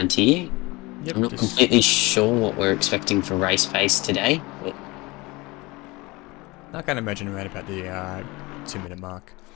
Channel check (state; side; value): quieter; right; 23.2 dB